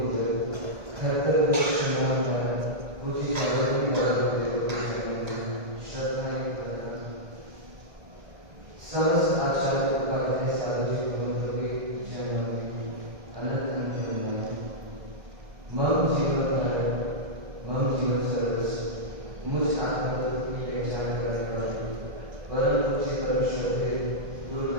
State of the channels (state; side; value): late; left; 1.8 ms